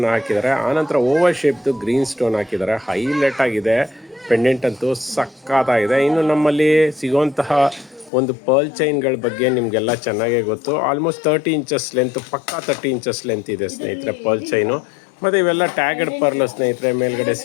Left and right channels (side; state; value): right; drops out; at 8.1 s